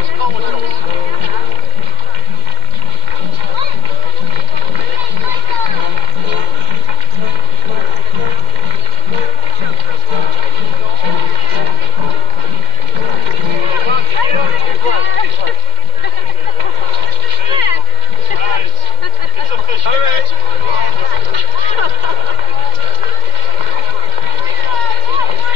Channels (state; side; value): late; left; 2.1 ms